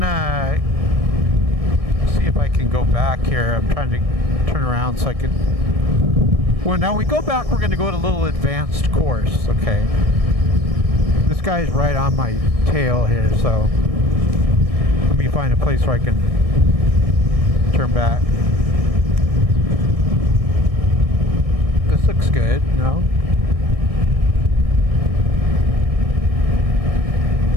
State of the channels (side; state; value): left; late; 1.6 ms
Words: see if I can go back here. I'm trying to turn around so I can. Well, now we go back, we're gonna go to a little advanced course. Okay. This guy's right on my tail here, so let me find a place where I can turn back. This looks good, no?